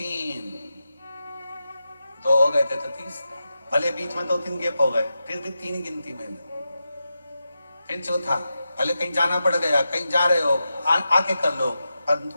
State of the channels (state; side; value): inverted; both; correlation -0.90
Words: 2 हो गए थे तो 30, भले बीच में 2-3 गैप हो गए, फिर भी 3 गिनती में लो। फिर चौथा, भले कहीं जाना पड़ गया, कहीं जा रहे हो, आके कर लो,